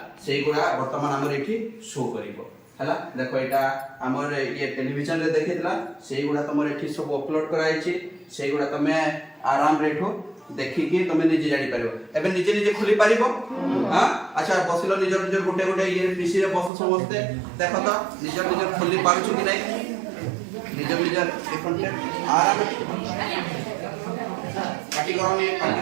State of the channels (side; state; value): left; drops out; at 16.7 s